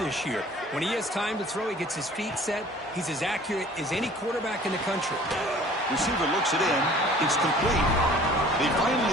year. When he has time to throw, he gets his feet set. He's as accurate as any quarterback in the country. Receiver looks it in. It's complete. They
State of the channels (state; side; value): normal; both; correlation 0.50